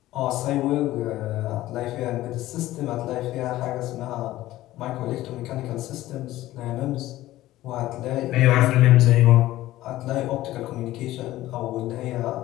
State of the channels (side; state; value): right; quieter; 15.7 dB